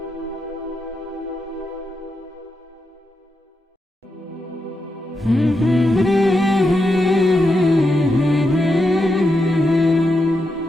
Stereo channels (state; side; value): normal; both; correlation 0.85